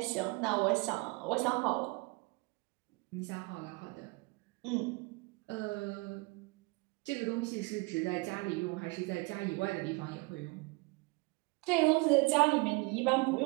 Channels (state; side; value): quieter; left; 26.8 dB